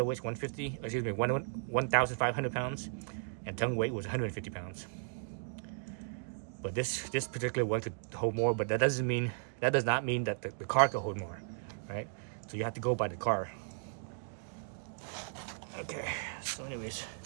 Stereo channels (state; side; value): silent; left; digital silence